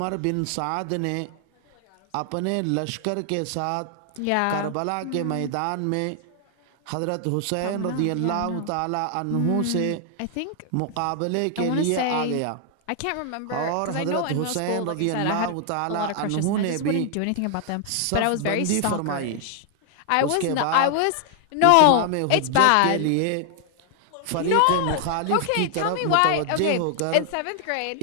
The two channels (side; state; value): both; different; correlation 0.00